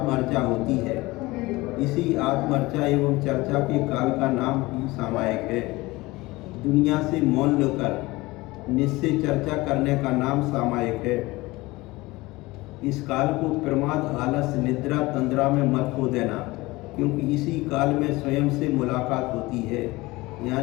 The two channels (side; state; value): right; quieter; 21.0 dB